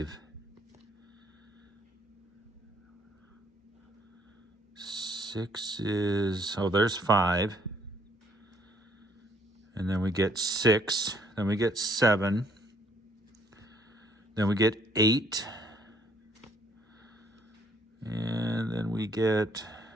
6 is, oh, there's 5. And then we get 6. Then we get 7. Then we get 8. And then we get,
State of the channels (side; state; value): both; normal; correlation 0.65